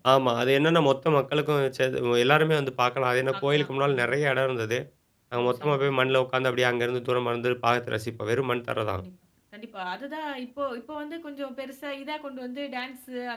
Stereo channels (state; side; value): identical; both; correlation 1.00